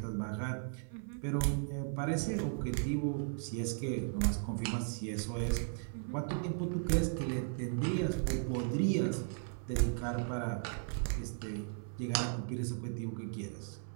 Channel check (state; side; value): silent; left; 54 dB below the other